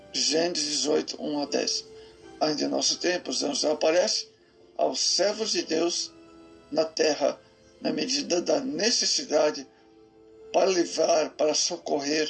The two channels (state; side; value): identical; both; correlation 1.00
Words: Gênesis 18, 1 a 10. Ainda em nosso tempo, os anjos aparecem aos servos de Deus na terra, na medida da necessidade, para livrar, para